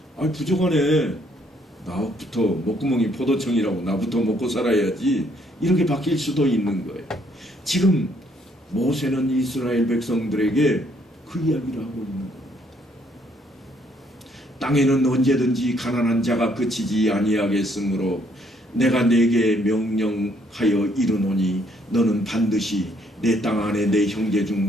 부족하네. 나부터 목구멍이 포도청이라고 나부터 먹고 살아야지. 이렇게 바뀔 수도 있는 거예요. 지금 모세는 이스라엘 백성들에게 그 이야기를 하고 있는 겁니다. 땅에는 언제든지 가난한 자가 그치지 아니하겠으므로 내가 네게 명령하여 이르노니 너는 반드시 내 땅 안에 내 형제 중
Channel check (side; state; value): both; normal; correlation 0.68